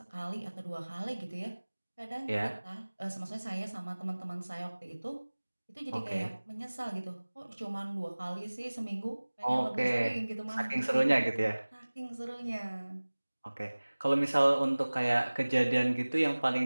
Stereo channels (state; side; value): inverted; both; correlation -1.00